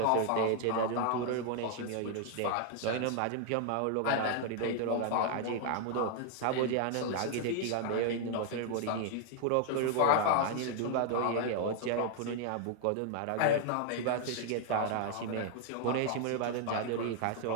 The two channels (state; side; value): different; both; correlation 0.00